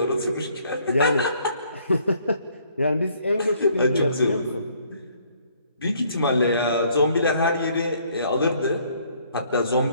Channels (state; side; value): inverted; both; correlation -0.64